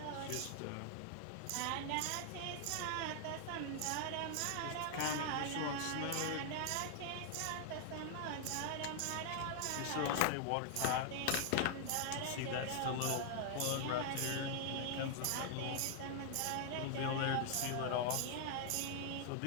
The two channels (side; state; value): both; different; correlation 0.00